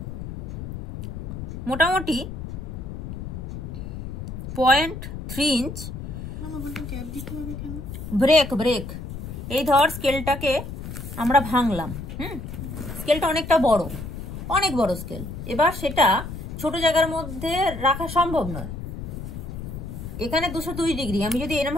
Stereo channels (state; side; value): noise; left; rumble, 8 dB below the sound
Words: মোটামুটি 0.3 ইঞ্চ ব্রেক। এই ধর স্কেলটাকে আমরা ভাঙলাম, স্কেলটা অনেকটা বড়, অনেক বড় স্কেল। এবার সেটা ছোট জায়গার মধ্যে রাখা সম্ভব নয়। এখানে 202 ডিগ্রি আমি যদি এরকম